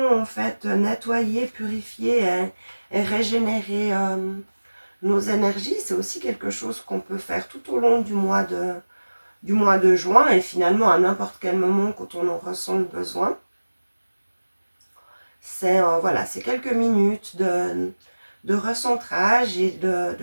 en fait nettoyer, purifier et régénérer nos énergies. C'est aussi quelque chose qu'on peut faire tout au long du mois de juin et finalement à n'importe quel moment quand on en ressent le besoin. C'est voilà, c'est quelques minutes de recentrage et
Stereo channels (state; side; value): inverted; both; correlation -1.00